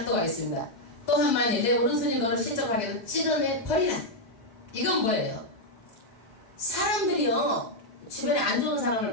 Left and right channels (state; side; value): late; right; 4.8 ms